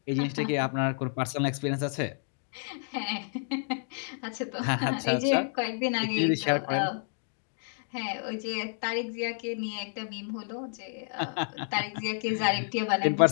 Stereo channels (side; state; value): right; silent; digital silence